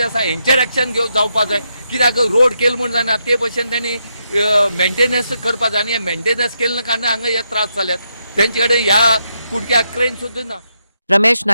आसा हेंचेर एक्शन जावपाक जाय कित्याक रोड केलो म्हण जायना ते भशेन तेणी मेंटेनन्स करपाक जाय आनी हे मेंटेनन्स केले कारणान हांगा हे त्रास जाल्यात तेंचे कडेन ह्या कुडक्याक क्रेन सुद्दां ना. Ramesh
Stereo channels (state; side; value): inverted; both; correlation -0.81